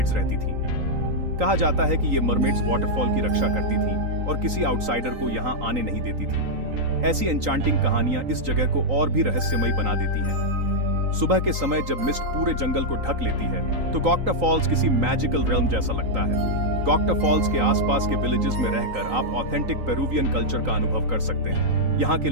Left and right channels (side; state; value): left; late; 3.9 ms